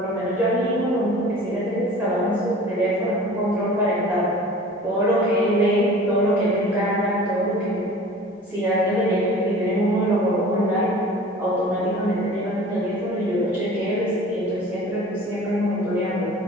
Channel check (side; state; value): both; normal; correlation 0.43